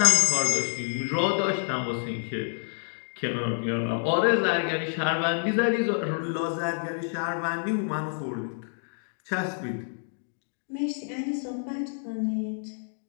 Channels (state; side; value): silent; right; digital silence